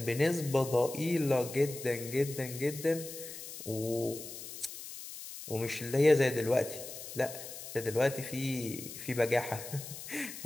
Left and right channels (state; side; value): noise; left; hiss, 11 dB below the sound